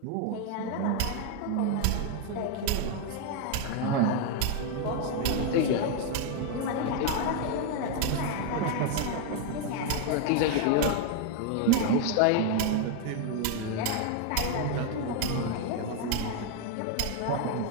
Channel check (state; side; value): different; both; correlation 0.01